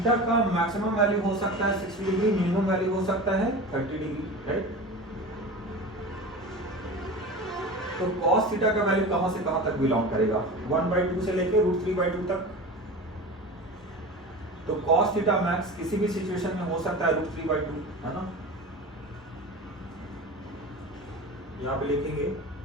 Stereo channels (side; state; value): both; normal; correlation 0.32